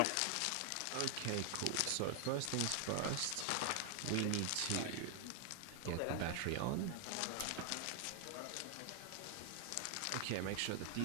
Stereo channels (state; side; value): different; both; correlation 0.00